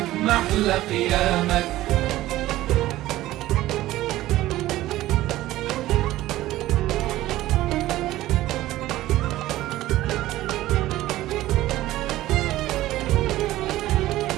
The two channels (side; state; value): left; quieter; 15.8 dB